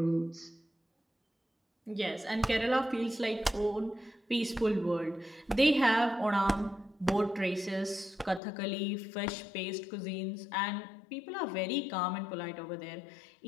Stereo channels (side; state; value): right; drops out; at 8.4 s